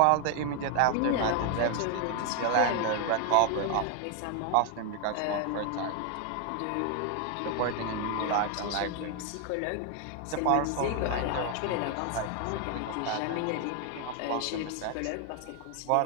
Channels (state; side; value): different; both; correlation 0.00